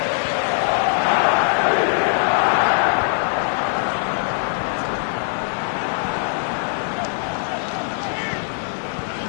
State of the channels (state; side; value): silent; right; digital silence